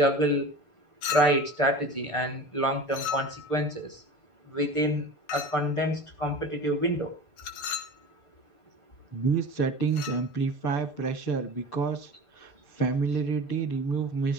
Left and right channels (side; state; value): right; late; 6.8 ms